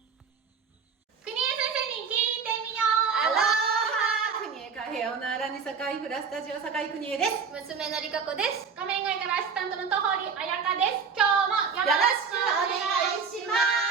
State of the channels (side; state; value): left; quieter; 5.8 dB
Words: 国枝先生に聞いてみよアロハ国枝カフェオナーラニサカイフラスタジオサカイ国枝です。娘のりかこです。画面外からアシスタントの戸堀彩香です。今日もよろしくお願いしま